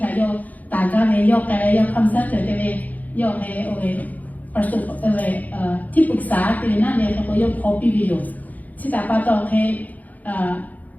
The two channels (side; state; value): right; late; 0.079 ms